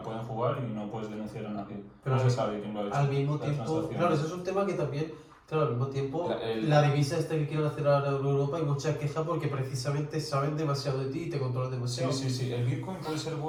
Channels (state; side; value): identical; both; correlation 1.00